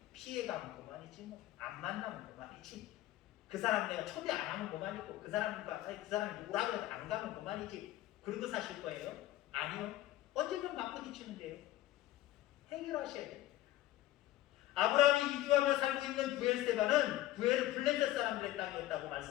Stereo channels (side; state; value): right; quieter; 15.1 dB